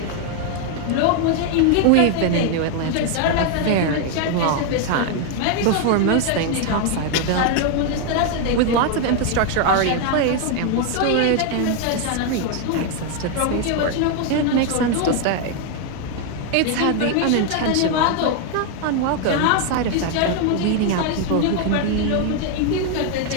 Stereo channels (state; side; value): different; both; correlation 0.01